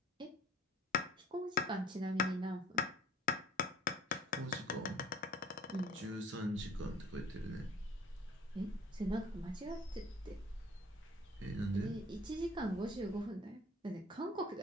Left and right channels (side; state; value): both; normal; correlation 0.49